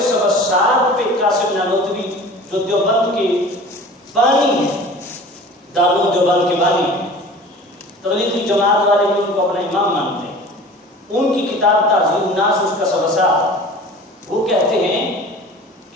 سبسات پہ قاسم نانوتوی جو دیوبند کے بانی ہیں، دارالعلوم دیوبند کے بانی ہیں، تبلیغی جماعت والے بھی ان کو اپنا امام مانتے ہیں، ان کی کتاب تعذیر الناس اس کا سبسات. وہ کہتے ہیں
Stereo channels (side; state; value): both; normal; correlation 0.41